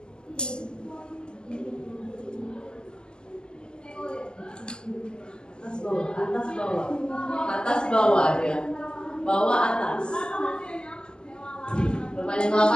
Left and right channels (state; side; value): late; right; 0.046 ms